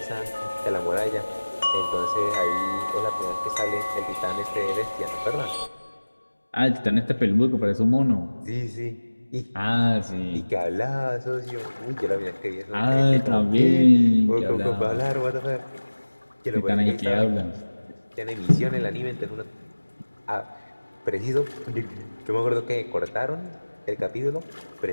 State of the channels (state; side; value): inverted; both; correlation -1.00